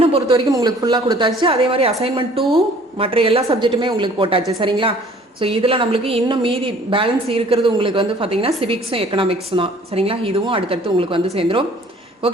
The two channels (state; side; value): normal; both; correlation 0.53